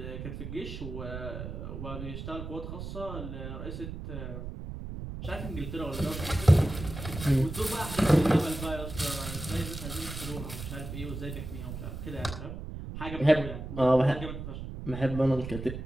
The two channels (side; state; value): right; noise; rumble, 8 dB below the sound